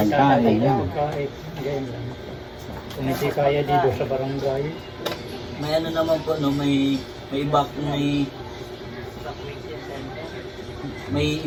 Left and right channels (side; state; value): both; identical; correlation 1.00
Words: tatay yan. pagkain. Ganyan lang. Kung hindi kaya dito sa barangay, May ano naman po, no, may